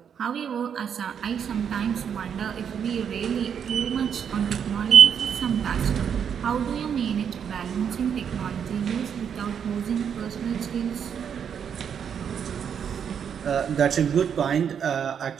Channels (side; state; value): left; quieter; 7.8 dB